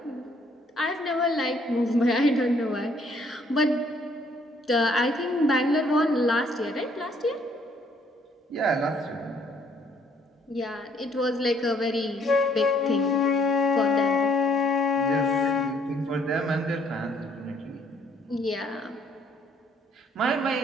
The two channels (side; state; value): both; normal; correlation 0.65